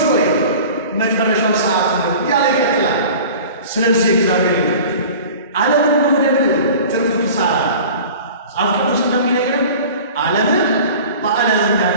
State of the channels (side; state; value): both; inverted; correlation -0.40